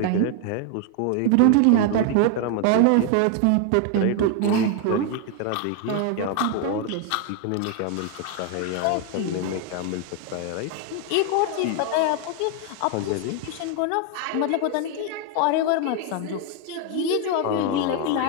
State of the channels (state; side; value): different; both; correlation 0.01